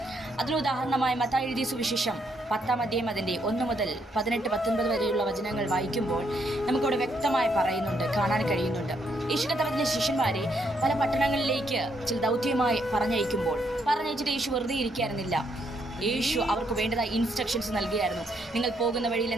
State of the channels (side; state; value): both; normal; correlation 0.74